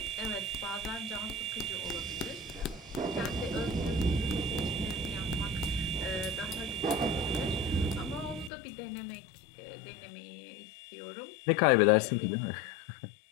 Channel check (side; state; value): right; drops out; at 8.5 s